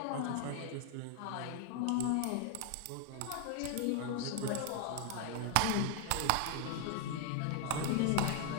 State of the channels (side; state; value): both; different; correlation 0.00